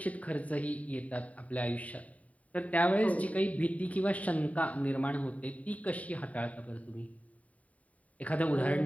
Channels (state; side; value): late; right; 0.069 ms